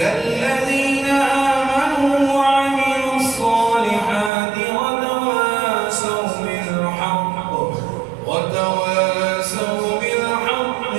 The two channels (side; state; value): left; drops out; at 4.3 s